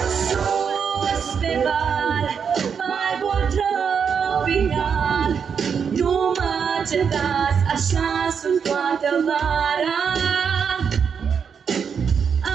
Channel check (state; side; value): quieter; left; 6.7 dB